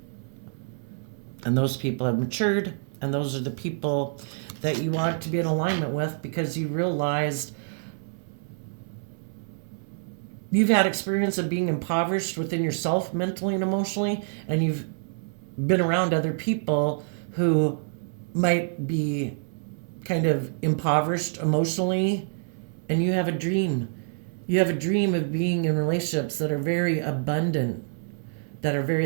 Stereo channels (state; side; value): silent; left; 60 dB below the other